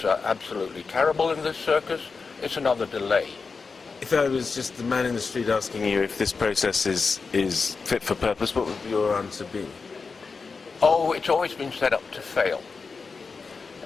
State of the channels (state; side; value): quieter; right; 4.7 dB